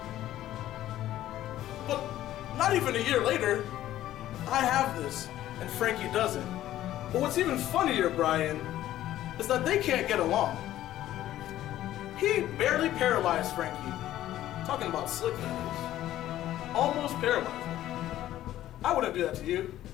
But not even a year later, I have this, and Frankie doesn't. But what's even funnier, Brian, is that they can't get along. He barely paralyzed Frankie. Talking about Slyck moves. Almost paralyzed him. I wouldn't do that to you.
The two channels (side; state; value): right; quieter; 13.5 dB